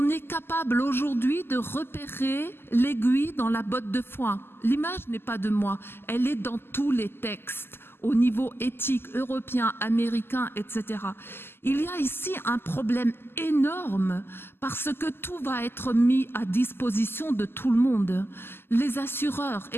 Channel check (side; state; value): right; late; 0.11 ms